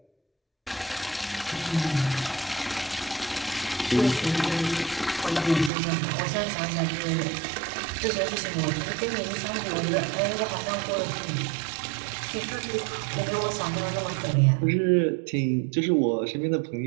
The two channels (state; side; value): drops out; left; at 5.7 s